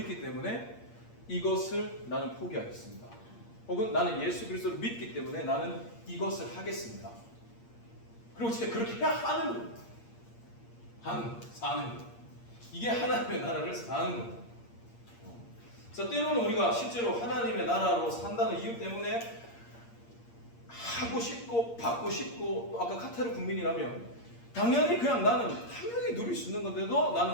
때문에 이것을 나는 포기하겠습니다. 혹은 나는 예수 그리스도를 믿기 때문에 나는 이것을 하겠습니다. 그리고 진짜 그렇게 해야 하는 겁니다. 사는 것. 이게 하나님의 나라를 사는 겁니다. 그래서 때로는 우리가 실제로 하나님의 나라로 산다는 이유 때문에 하고 싶고 받고 싶고 또 아까 카타르 국민이라면 당연히 그냥 나는 당연히 누릴 수 있는 건데도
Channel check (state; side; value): late; right; 8.6 ms